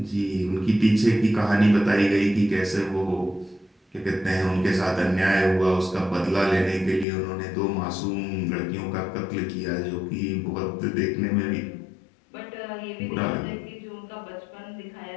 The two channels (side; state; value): right; drops out; at 7.1 s